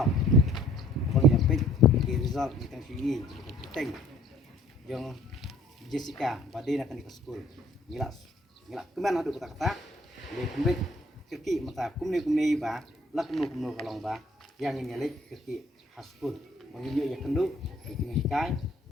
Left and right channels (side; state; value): both; normal; correlation 0.57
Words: bang dapat di result di tangki penting yang Jessica badai nak ke school ngilak keman ada kata-kata le kembali keki mata kumne ba la kumno kalong ba yang ini lek keki school menginyo ya kendu ini kai